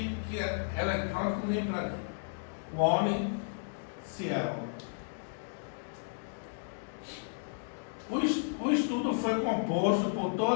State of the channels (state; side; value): silent; right; digital silence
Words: Electronic Library, One Cielo. O estudo foi composto por